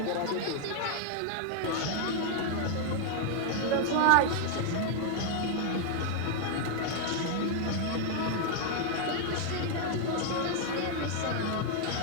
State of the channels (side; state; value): both; different; correlation 0.00